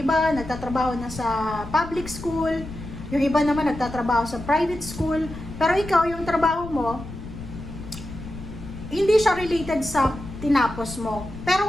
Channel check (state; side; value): noise; left; rumble, 12 dB below the sound